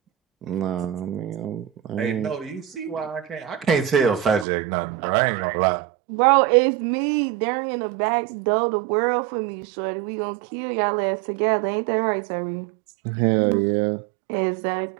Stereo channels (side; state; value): left; drops out; at 4.5 s